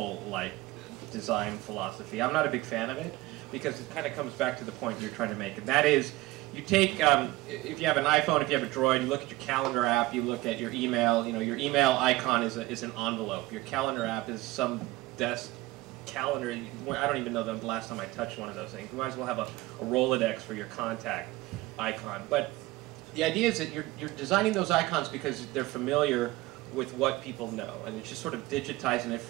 design philosophy. I'm not a big fan of it because it kind of comes back to the point you're trying to make, and that is, you take, if you have an iPhone, if you have a Droid, you look at your calendar app, you look at your email. You know, your email icon is an envelope. Your calendar app is some desk calendar. I don't even know the last time I touched one of those things. You might as well have a Rolodex for your contact icon. But the idea is that you're designing those icons because they're familiar with what people know, and it's just sort of digitizing it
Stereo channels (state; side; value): quieter; left; 19.1 dB